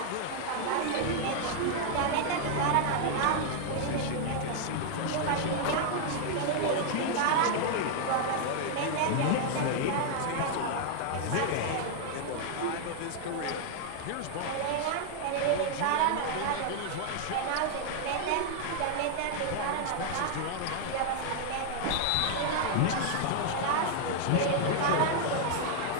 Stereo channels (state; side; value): different; both; correlation 0.00